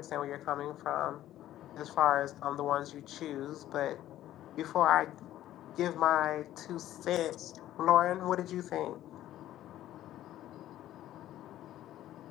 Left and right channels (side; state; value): right; quieter; 13.2 dB